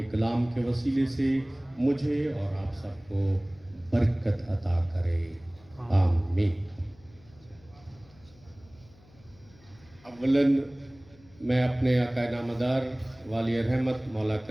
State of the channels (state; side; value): noise; left; hum, 26 dB below the sound